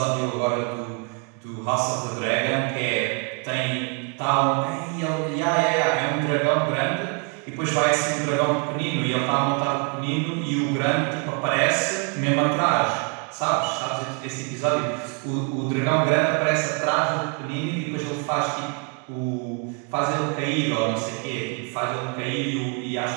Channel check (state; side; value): quieter; left; 36.8 dB